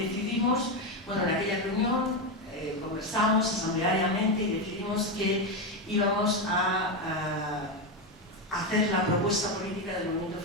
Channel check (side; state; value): both; normal; correlation 0.10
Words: en aquella reunión conversamos asambleariamente y decidimos que íbamos a hacer la propuesta política del movimiento